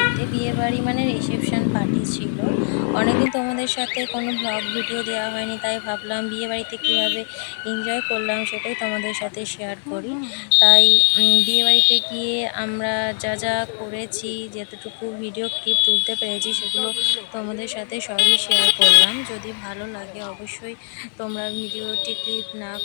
বিয়েবাড়ি মানে রিসেপশন পার্টি ছিল। অনেকদিন তোমাদের সাথে কোনো ব্লগ ভিডিও দেওয়া হয়নি, তাই ভাবলাম বিয়েবাড়িতে কীভাবে এনজয় করলাম সেটাই তোমাদের সাথে শেয়ার করি। তাই বিয়েবাড়িতে গিয়ে আমরা যা যা করেছি, যেতটুকু ভিডিও ক্লিপ তুলতে পেরেছি সেগুলো তোমাদের সাথে সবই শেয়ার করলাম। যদি ভালো লাগে অবশ্যই তোমরা ভিডিওটি ক্লিপ না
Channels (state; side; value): silent; right; digital silence